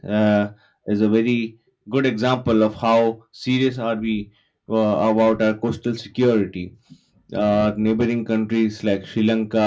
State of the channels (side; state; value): both; identical; correlation 1.00